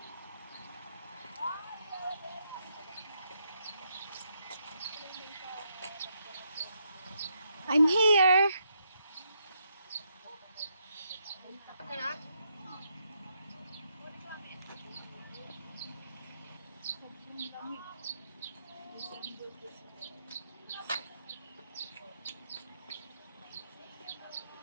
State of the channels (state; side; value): inverted; both; correlation -0.78